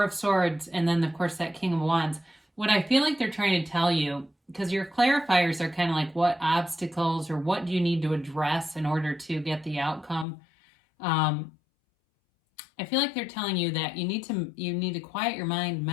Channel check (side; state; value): right; drops out; at 10.2 s